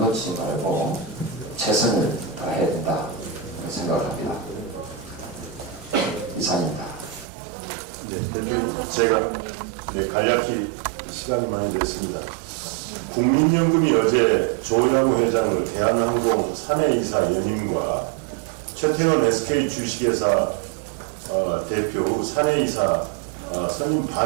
말고 최선을 다해야 된다 생각을 합니다. 이상입니다. 네, 대표 제가 간략히 시간이 많이 됐습니다. 국민연금이 어제 조양호 회장을 대한항공 사내이사 연임과 최태원 SK 주식회사 대표 후 사내이사 선임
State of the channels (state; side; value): drops out; left; at 7.2 s